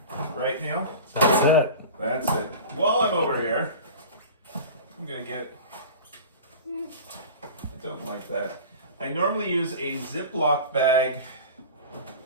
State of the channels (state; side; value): inverted; both; correlation -0.34